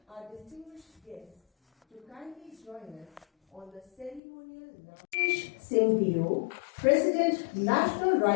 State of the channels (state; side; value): drops out; right; at 4.2 s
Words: our distinguished guests to kindly join us on the ceremonial Mukesh Singh DO, President, National